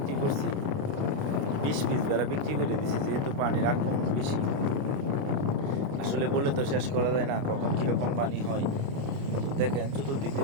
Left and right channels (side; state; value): left; late; 29 ms